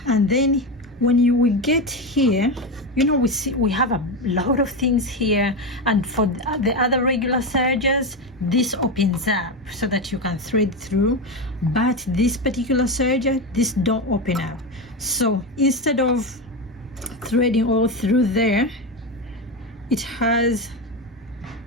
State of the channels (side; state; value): both; normal; correlation 0.15